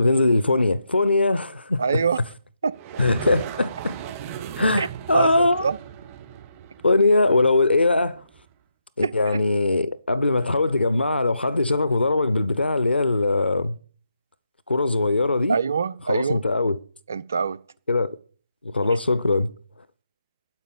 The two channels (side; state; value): both; inverted; correlation -0.82